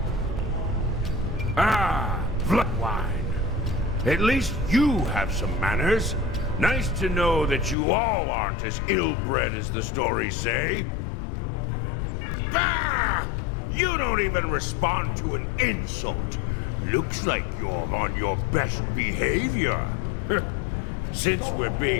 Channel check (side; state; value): right; drops out; at 7.8 s